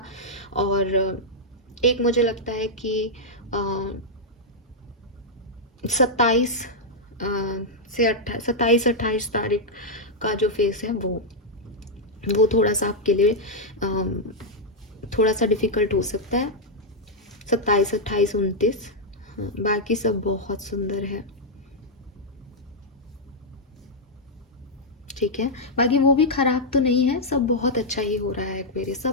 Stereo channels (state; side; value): normal; both; correlation -0.04